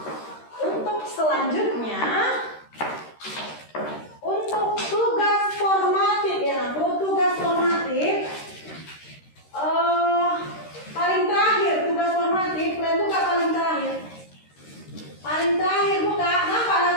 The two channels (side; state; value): right; late; 13 ms